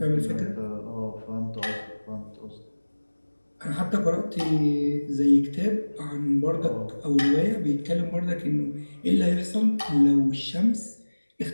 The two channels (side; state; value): both; inverted; correlation -1.00